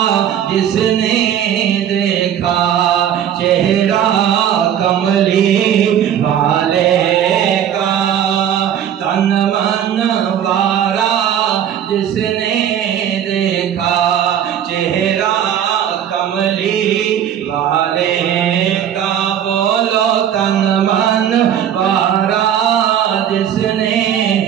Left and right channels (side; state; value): left; quieter; 9.8 dB